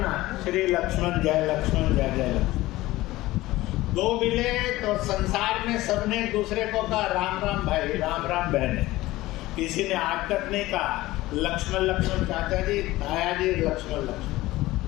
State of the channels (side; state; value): right; quieter; 17.8 dB